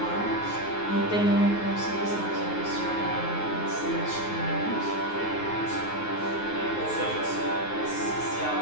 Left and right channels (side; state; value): right; late; 9.5 ms